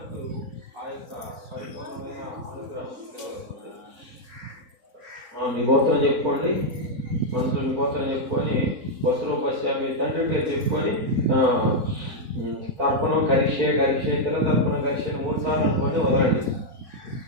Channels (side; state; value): left; late; 4.0 ms